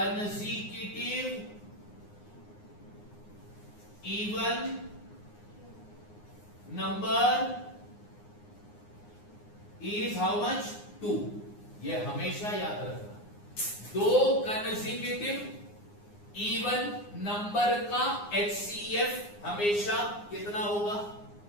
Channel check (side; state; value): right; late; 9.7 ms